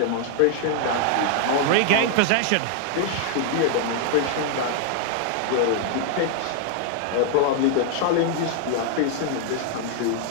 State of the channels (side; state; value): both; different; correlation 0.00